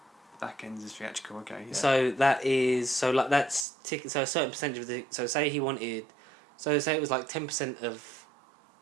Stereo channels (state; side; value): drops out; left; at 3.7 s